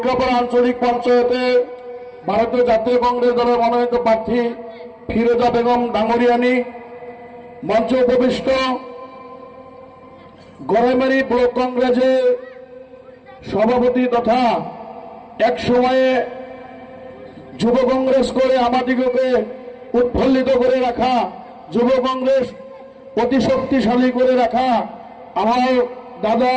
আঞ্চলিক পঞ্চায়েতের ভারতীয় জাতীয় কংগ্রেস দলের মনোনীত প্রার্থী ফিরোজা বেগম ডাঙ্গরিয়ানি, মঞ্চ উপবিষ্ট গড়াইমারি ব্লক কংগ্রেসের সভাপতি তথা এক সময়ে যুব কংগ্রেস করে আমাদিগকে উৎফুল্লিত করে রাখা, যুব কংগ্রেস অতি শক্তিশালী করে রাখা আমার দাদা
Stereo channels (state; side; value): identical; both; correlation 1.00